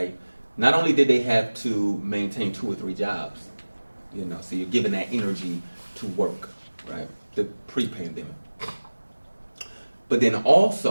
Not only did they have to maintain 2 or 3 jobs, so you're giving that energy to work, right? The pre-pandemic. But then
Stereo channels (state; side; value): inverted; both; correlation -1.00